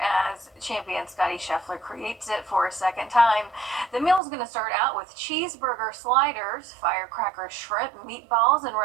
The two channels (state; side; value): drops out; left; at 4.2 s